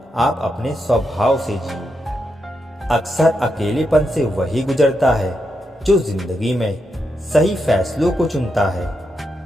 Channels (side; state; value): both; normal; correlation 0.84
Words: आप अपने स्वभाव से जियो। अक्सर अकेलेपन से वही गुजरता है जो जिंदगी में सही फैसलों को चुनता है।